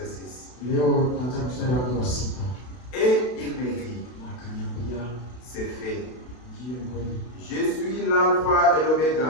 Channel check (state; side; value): late; right; 32 ms